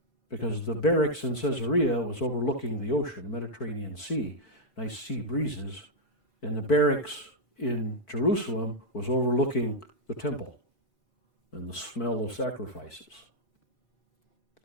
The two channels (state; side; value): late; right; 4.5 ms